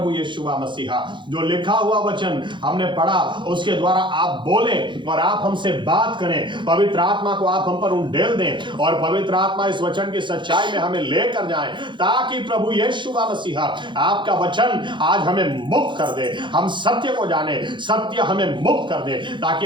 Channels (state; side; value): late; left; 0.23 ms